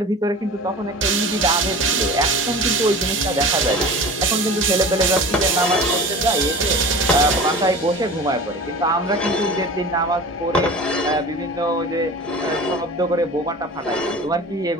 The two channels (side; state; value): both; normal; correlation 0.36